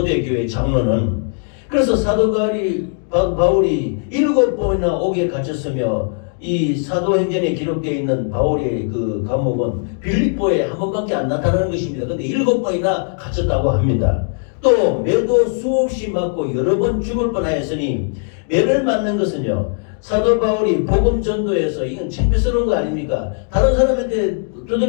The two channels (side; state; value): right; silent; 63 dB below the other